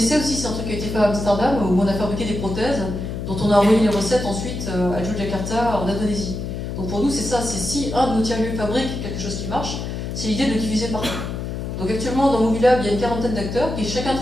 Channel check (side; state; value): left; noise; hum, 5 dB below the sound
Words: aussi, c'est un truc qui a été fait à Amsterdam, où on a fabriqué des prothèses, dont on a envoyé les recettes ensuite à Yogyakarta, en Indonésie. Donc pour nous, c'est ça, c'est si un de nos tiers-lieux fabrique quelque chose qui marche, c'est l'idée de le diffuser partout. Donc actuellement, dans Mobilab, il y a une quarantaine d'acteurs qui chacun